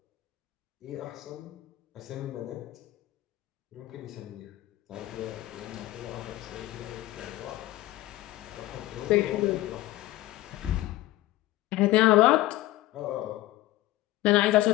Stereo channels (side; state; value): right; quieter; 16.6 dB